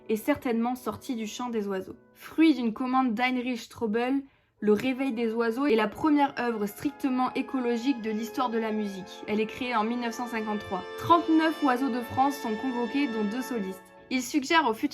est certainement sortie du chant des oiseaux. Fruit d'une commande d'Heinrich Strobel, Le Réveil des oiseaux est la première œuvre strictement écologique de l'histoire de la musique. Elle est créée en 1953. 39 oiseaux de France sont convoqués, dont 2 solistes. Il suggère au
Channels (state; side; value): identical; both; correlation 1.00